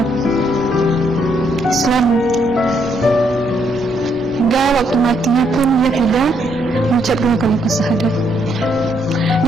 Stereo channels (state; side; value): normal; both; correlation 0.73